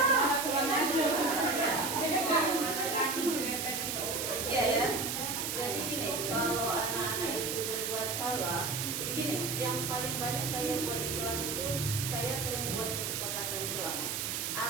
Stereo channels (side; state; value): right; noise; hiss, 2 dB below the sound